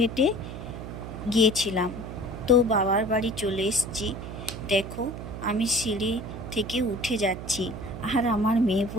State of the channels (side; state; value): right; noise; hum, 9 dB below the sound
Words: গিয়েছিলাম। তো বাবার বাড়ি চলে এসেছি। দেখো, আমি সিঁড়ি থেকে উঠে যাচ্ছি, আর আমার মেয়ে